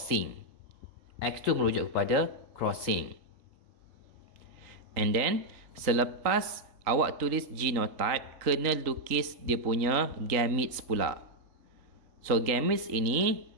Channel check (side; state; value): left; late; 3.8 ms